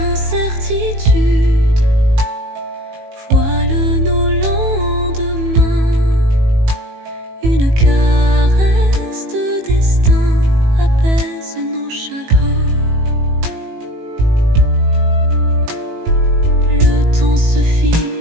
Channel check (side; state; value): left; late; 18 ms